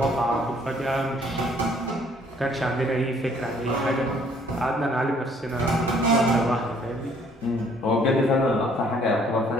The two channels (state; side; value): normal; both; correlation 0.61